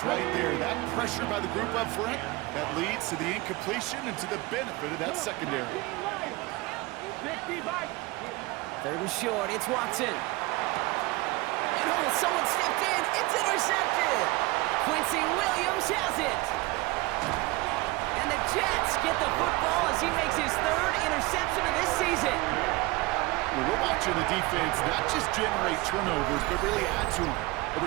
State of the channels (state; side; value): quieter; left; 22.1 dB